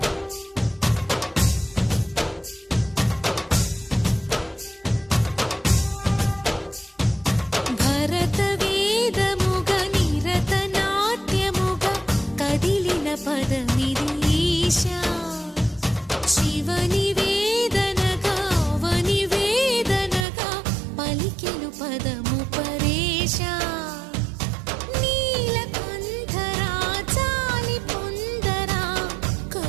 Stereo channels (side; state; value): left; drops out; at 20.2 s